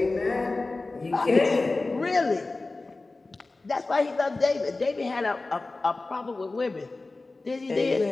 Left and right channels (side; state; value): right; quieter; 3.3 dB